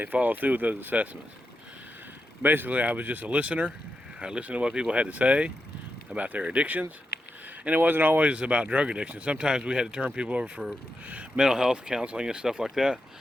followed through with those assessments. Basically, I was just a listener. I listened to what people had to say about their addictions, and it wasn't always about drug addiction. Sometimes we had to turn people over for mental health counseling and stuff like that.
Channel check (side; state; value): both; normal; correlation 0.87